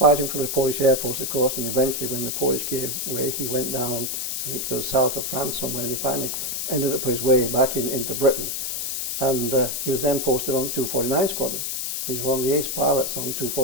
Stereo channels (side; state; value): left; noise; hiss, 2 dB below the sound